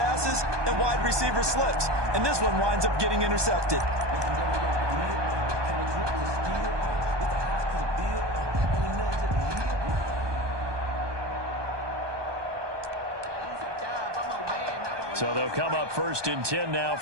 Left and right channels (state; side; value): late; left; 1.2 ms